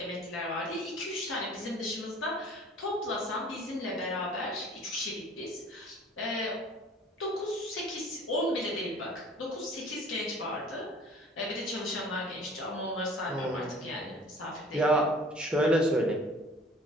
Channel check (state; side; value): normal; both; correlation 0.48